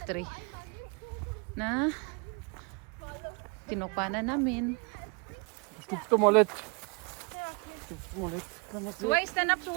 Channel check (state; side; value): quieter; left; 32.5 dB